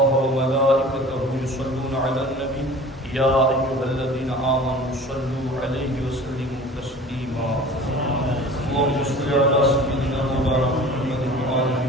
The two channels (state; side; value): normal; both; correlation 0.42